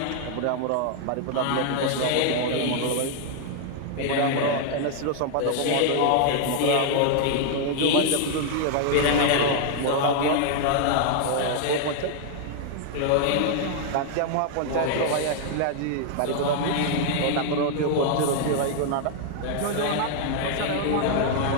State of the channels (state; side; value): different; both; correlation 0.00